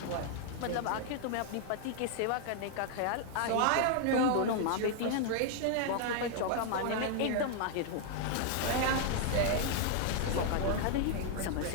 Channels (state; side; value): different; both; correlation 0.00